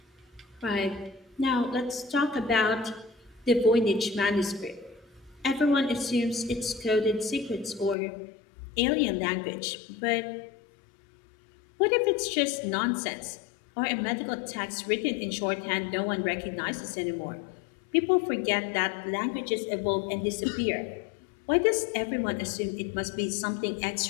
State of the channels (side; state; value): right; drops out; at 8.0 s